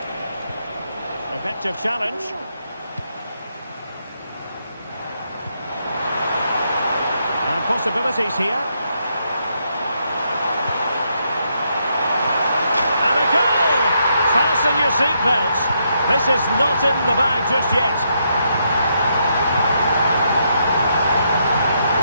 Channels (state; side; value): inverted; both; correlation -0.78